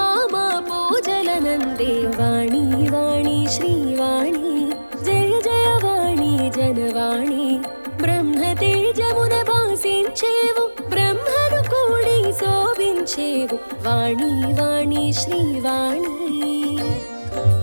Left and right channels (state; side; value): inverted; both; correlation -1.00